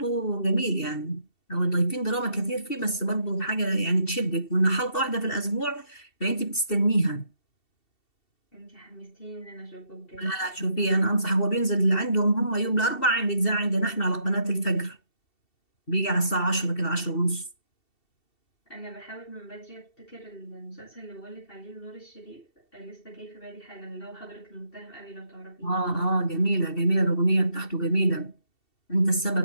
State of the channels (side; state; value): right; late; 2.7 ms